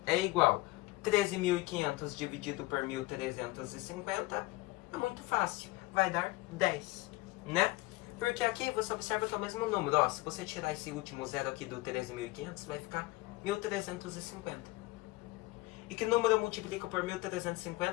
é igual a 13.500 dividido por 1.350. É muito fácil. Vai dar 10, né? Porque aqui você observa que é o mesmo número. Ó, se você tirar esse último zero aqui do 13.500, vai ficar 1.350. E que número eu multiplico por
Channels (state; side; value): quieter; right; 20.0 dB